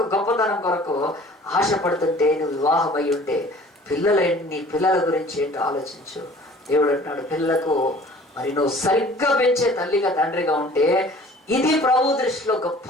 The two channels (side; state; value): both; normal; correlation 0.49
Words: గొప్పతనం కొరకు ఆశపడుతుంటే, నువ్వు వివాహం అయి ఉంటే నీ పిల్లల గురించి ఏంటో ఆలోచించు. దేవుడు అంటున్నాడు, పిల్లలకు మరి నువ్వు సరిగ్గా పెంచే తల్లిగా తండ్రిగా ఉంటే ఇది ప్రభు దృష్టిలో గొప్ప